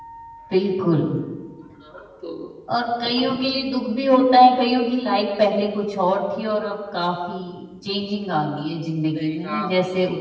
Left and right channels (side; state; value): both; identical; correlation 1.00